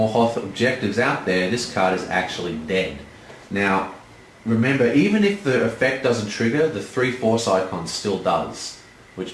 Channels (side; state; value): both; identical; correlation 1.00